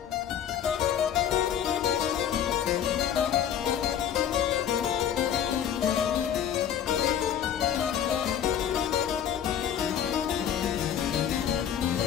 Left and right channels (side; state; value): right; quieter; 9.4 dB